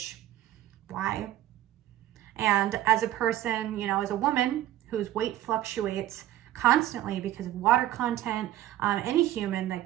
why? And as a person, as a woman whose weight fluctuates constantly because of water content, any human,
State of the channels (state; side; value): quieter; left; 13.8 dB